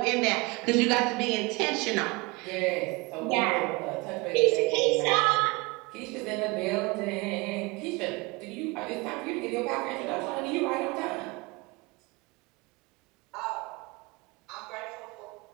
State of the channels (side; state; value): left; quieter; 25.2 dB